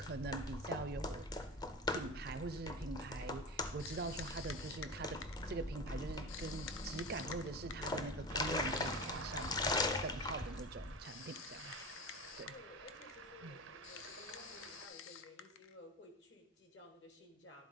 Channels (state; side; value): normal; both; correlation 0.29